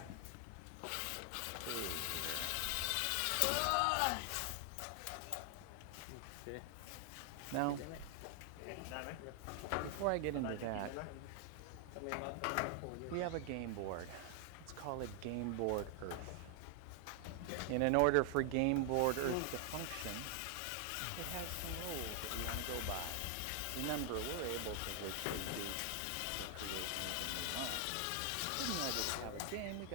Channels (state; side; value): different; both; correlation 0.00